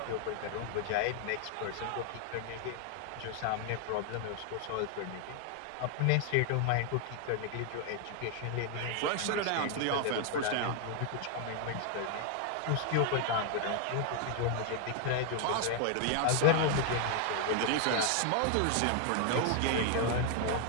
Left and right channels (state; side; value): different; both; correlation 0.00